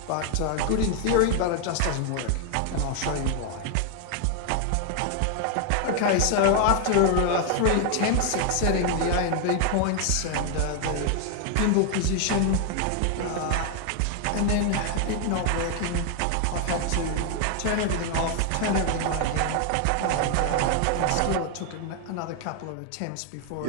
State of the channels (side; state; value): both; different; correlation 0.00